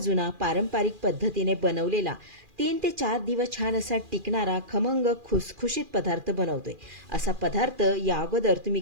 पारंपरिक पद्धतीने बनवलेला 3 ते 4 दिवस छान असा टिकणारा खमंग खुसखुशीत पदार्थ बनवतोय. असा पदार्थ या अगोदर तुम्ही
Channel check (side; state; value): left; late; 2.4 ms